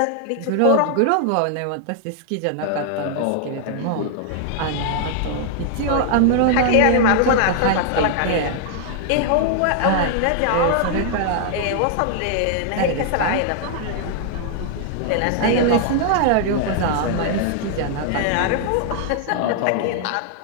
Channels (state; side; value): different; both; correlation 0.00